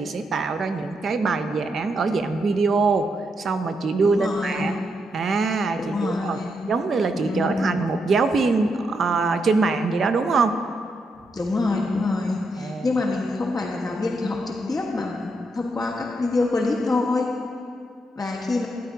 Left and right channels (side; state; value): both; normal; correlation 0.81